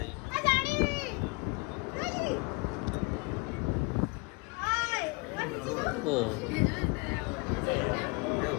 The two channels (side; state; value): right; quieter; 28.2 dB